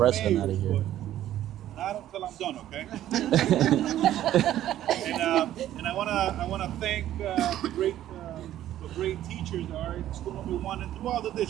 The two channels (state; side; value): quieter; left; 12.6 dB